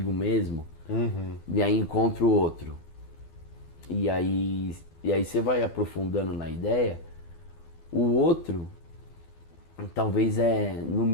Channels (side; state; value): right; late; 12 ms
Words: mesmo, Uhum. e aí encontro outro. E aí você vai aprofundando na ideia, o outro talvez é no